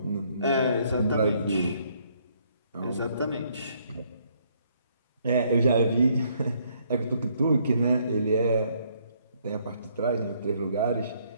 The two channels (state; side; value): inverted; both; correlation -0.68